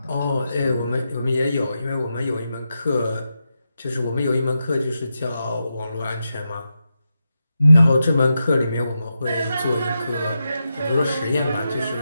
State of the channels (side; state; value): both; inverted; correlation -0.88